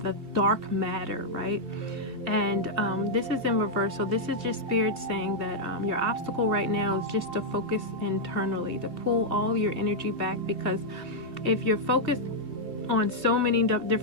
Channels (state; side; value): late; left; 2.5 ms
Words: dark matter, right? And this is in reverse. So this is just Spirit saying that your obstacle right now is just to focus internally, to pull all your energy back, because if you're focused on so many